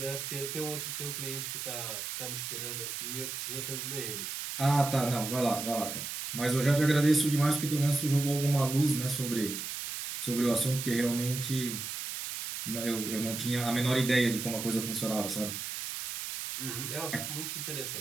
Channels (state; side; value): noise; right; hiss, 5 dB below the sound